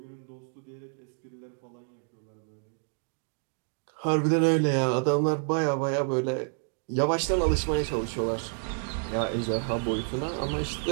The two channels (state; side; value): silent; left; 58 dB below the other